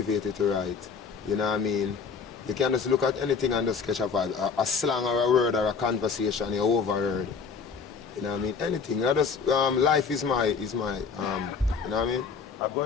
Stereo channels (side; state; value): right; quieter; 5.6 dB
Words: to write. You know what I mean? You can just look at anything and just catch a vibe. A slang or a word or a conversation you overheard. You know what I mean? Anything. You know, just, life is my, you know what I mean? I'm